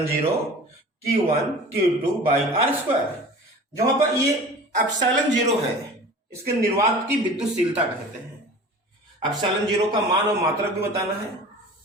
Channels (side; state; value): both; normal; correlation 0.40